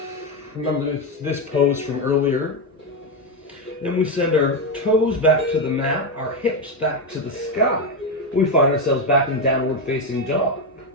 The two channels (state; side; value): normal; both; correlation 0.09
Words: Remember this pose from earlier. Then we send our toes back to the mat, our hips back to the sky. We find ourselves back in downward facing dog.